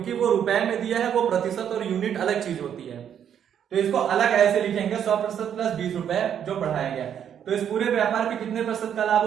वो रुपए में दिया है, वो प्रतिशत और यूनिट अलग चीज होती है। तो इसको अलग ऐसे लिखेंगे 100% प्लस 20 रुपए जो बढ़ाया गया। तो इस पूरे व्यापार पे कितने प्रतिशत का लाभ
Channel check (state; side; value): quieter; left; 9.0 dB